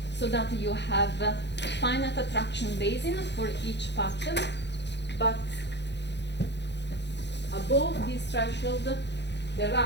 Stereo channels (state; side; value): late; right; 0.50 ms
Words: so that you have a finite attraction basin for each pattern, but above this threshold, the